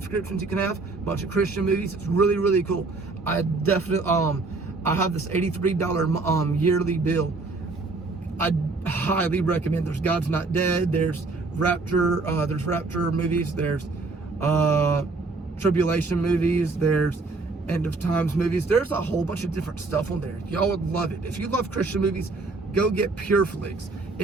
you can have. A bunch of Christian movies. It's really, really cool. I definitely, I have this $83 yearly bill. I highly recommend. There's God's Not Dead. There's Rapture. There's Rapture movies. There's tribulation movies. There's end of times movies. There's a whole bunch of different stuff on there. Y'all would love it. If you love Christian movies, go get Pure Flix.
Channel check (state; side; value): quieter; left; 3.7 dB